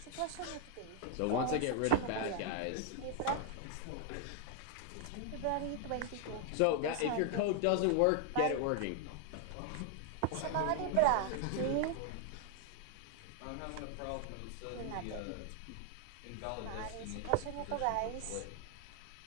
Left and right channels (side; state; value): both; different; correlation 0.00